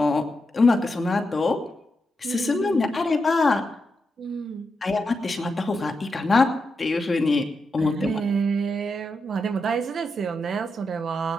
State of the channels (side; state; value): both; normal; correlation 0.86